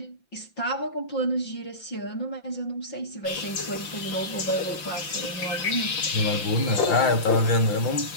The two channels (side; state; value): right; late; 5.9 ms